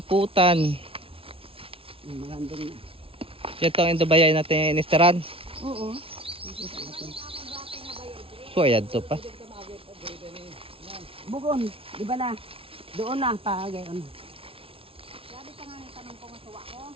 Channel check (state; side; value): late; left; 0.26 ms